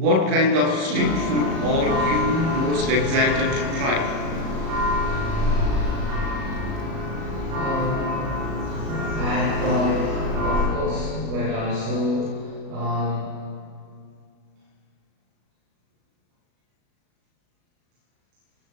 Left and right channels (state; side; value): late; left; 37 ms